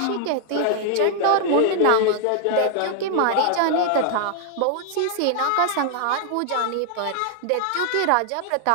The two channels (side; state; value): both; different; correlation 0.00